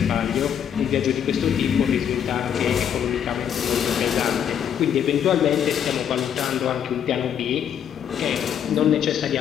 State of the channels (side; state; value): right; quieter; 8.8 dB